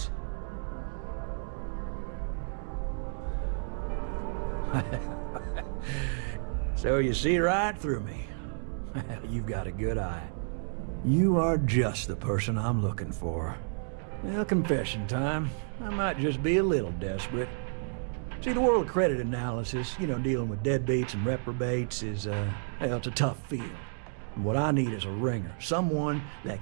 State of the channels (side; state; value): left; silent; digital silence